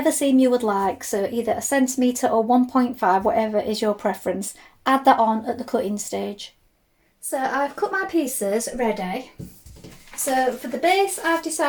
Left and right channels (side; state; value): both; identical; correlation 1.00